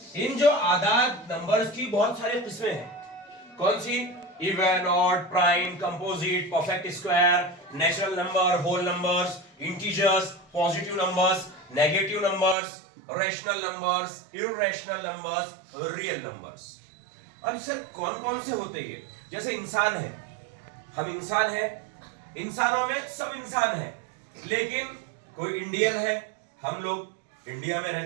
इन जो आदाद नंबर्स की बहुत सारी किस्में हैं। कौन सी? Even, odd, prime, composite, perfect square, natural number, whole numbers, integers, positive numbers, negative numbers, rational numbers, irrational numbers, real numbers. अब सर कौन कौन से होते ये? जैसे इंसान है, हम इंसान है, इंसानों में सब इंसान है, लेकिन कोई इंडियन है, हम लोग इंडिया में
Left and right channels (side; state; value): left; drops out; at 12.6 s